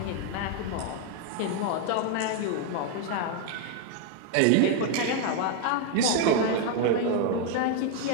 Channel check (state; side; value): different; both; correlation 0.01